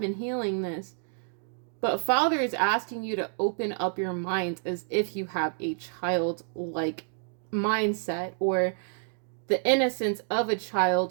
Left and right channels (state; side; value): silent; left; 59 dB below the other